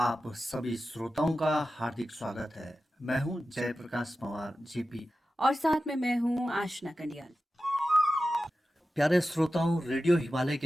सभी श्रोताओं का हार्दिक स्वागत है। मैं हूं जयप्रकाश पवार जेपी और साथ में मैं हूं आशना कंडियाल। प्यारे श्रोताओं, रेडियो हिमालय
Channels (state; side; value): normal; both; correlation 0.93